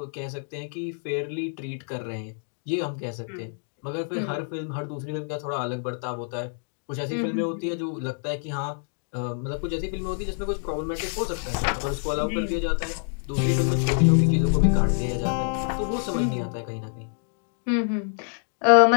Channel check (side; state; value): right; silent; 60 dB below the other